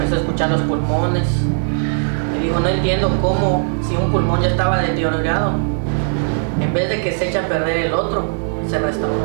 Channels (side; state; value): left; silent; digital silence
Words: a escuchar los pulmones. Y dijo, no entiendo cómo, si un pulmón ya estaba deteriorado, en vez de que se eche a perder el otro, se restauró.